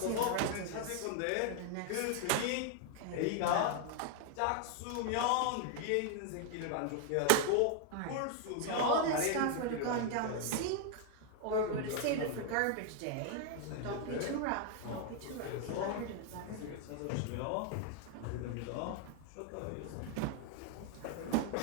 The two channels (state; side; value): different; both; correlation 0.00